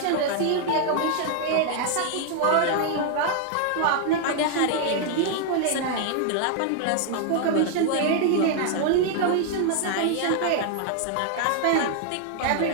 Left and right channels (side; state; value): both; different; correlation 0.00